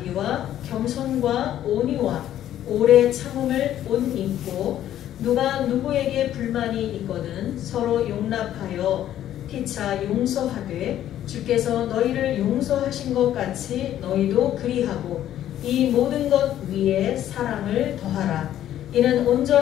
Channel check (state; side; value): quieter; right; 11.8 dB